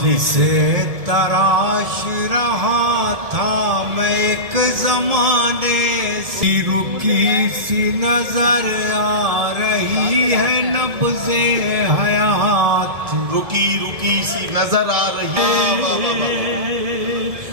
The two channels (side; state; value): left; late; 1.7 ms